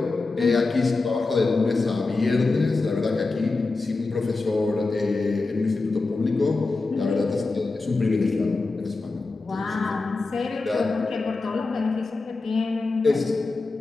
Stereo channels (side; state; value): right; quieter; 3.6 dB